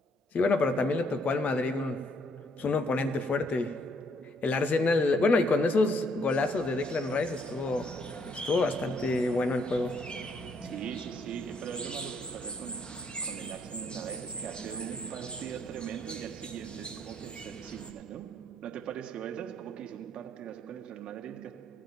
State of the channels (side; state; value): both; normal; correlation 0.70